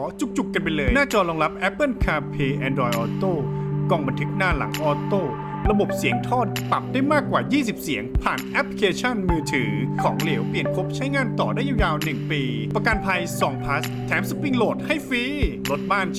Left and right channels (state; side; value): identical; both; correlation 1.00